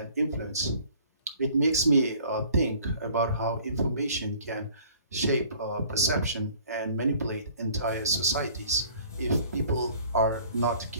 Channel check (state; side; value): inverted; both; correlation -0.53